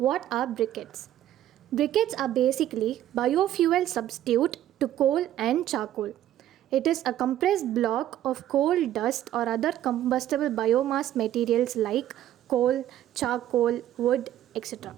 are briquettes? Briquettes are basically biofuel substitute to coal and charcoal. It is a compressed block of coal dust or other combustible biomass materials like coal, charcoal, wood, etc.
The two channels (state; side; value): quieter; left; 12.4 dB